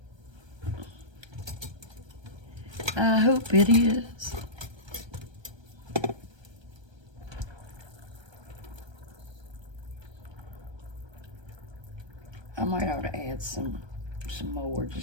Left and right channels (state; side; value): late; left; 1.3 ms